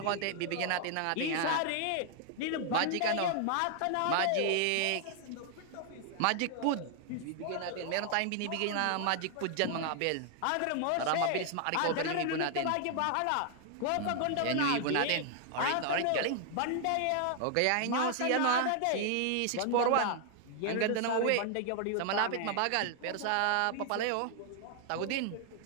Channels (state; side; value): different; both; correlation 0.00